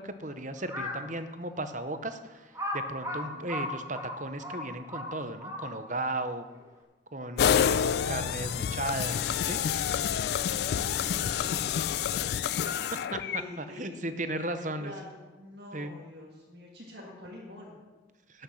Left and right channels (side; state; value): right; quieter; 4.7 dB